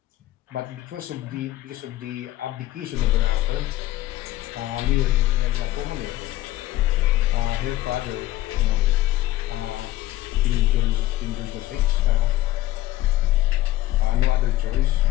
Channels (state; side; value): quieter; right; 15.7 dB